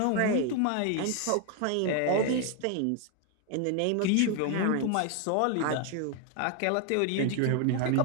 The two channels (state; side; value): different; both; correlation 0.01